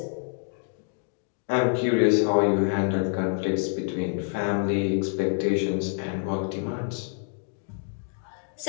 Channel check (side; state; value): right; silent; 59 dB below the other